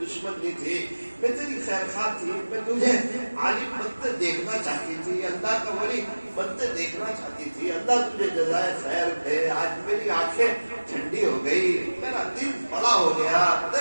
دشمن نہیں تھی، میں تیری خیر خواہ تھی، میں تجھے عالم بنتے دیکھنا چاہتی تھی، اللہ کا ولی بنتے دیکھنا چاہتی تھی، اللہ تجھے جزائے خیر دے۔ آج میری آنکھیں ٹھنڈی ہو گئی، میرا دل بڑا ہو گیا،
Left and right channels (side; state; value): both; inverted; correlation -1.00